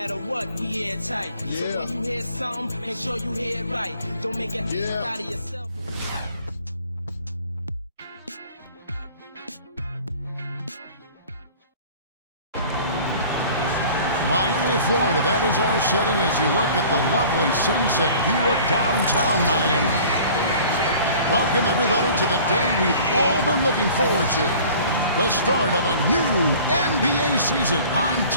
what, we airtight. So when you hear something, make sure you hear it right. Don't make it out of yourself. Miami, Florida, that is our setting as you look at the lovely sunset view of downtown Miami. Welcome, everybody, to the day we've all been looking forward to. The start of a new NBA season on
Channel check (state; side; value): inverted; both; correlation -0.47